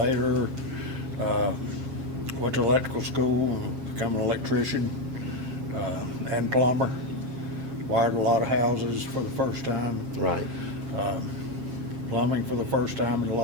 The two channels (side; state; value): left; late; 7.4 ms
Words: went to electrical school and become an electrician and plumber. Wired a lot of houses for the first time. Right. Plumbing for the first time in a